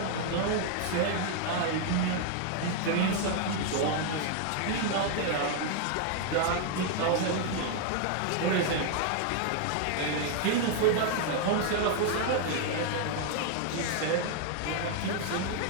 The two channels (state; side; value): different; both; correlation 0.00